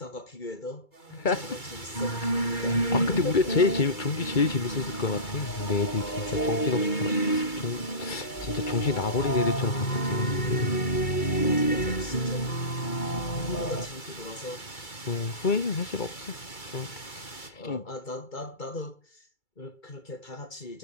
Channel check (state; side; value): late; right; 2.3 ms